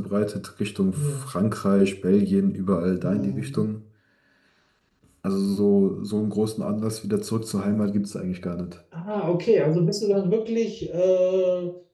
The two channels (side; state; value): both; identical; correlation 1.00